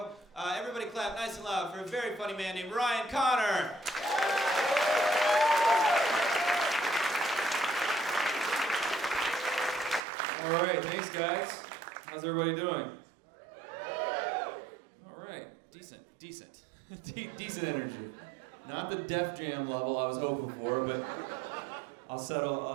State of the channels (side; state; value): left; drops out; at 10.1 s